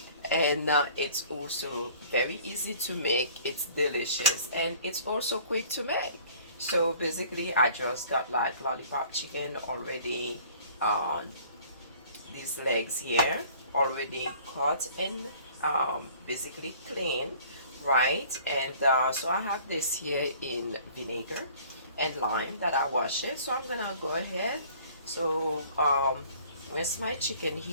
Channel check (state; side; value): inverted; both; correlation -0.52